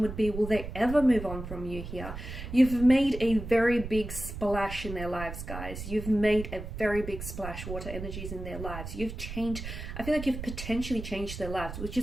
would be, will they ever move on from you here? You've made a very big splash in their lives, guys. You've made a very big splash, water energies in their lives. You've changed, I feel like you've potentially changed their lives, which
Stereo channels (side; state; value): right; noise; rumble, 8 dB below the sound